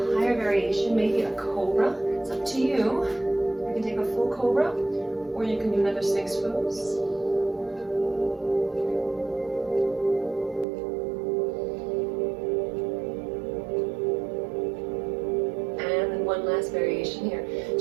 higher variation, maybe a cobra. It's up to you. You can take a full cobra, or you can do another Sphinx pose. And then one last variation here.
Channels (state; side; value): drops out; left; at 10.7 s